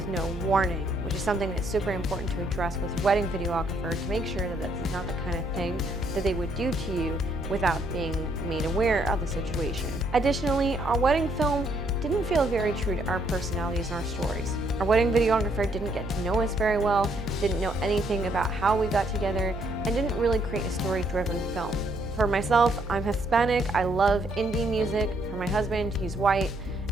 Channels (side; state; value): right; noise; hum, 11 dB below the sound